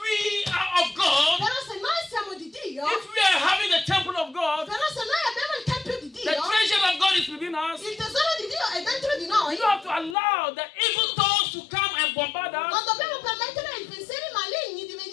are of God, Però se noi siamo di Dio, if we are having the temple of God, però se noi abbiamo il tempio di the Dio, treasure of God is within us, il tesoro di Dio è dentro di noi, you have to allow the evil thoughts to come and bombard non us dobbiamo permettere ai pensieri maligni di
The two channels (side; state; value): right; drops out; at 10.2 s